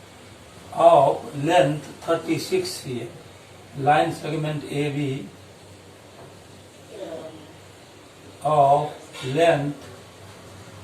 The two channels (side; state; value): both; identical; correlation 1.00